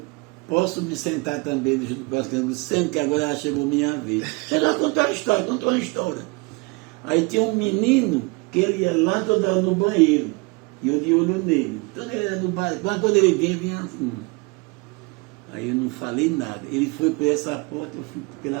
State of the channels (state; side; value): quieter; left; 27.8 dB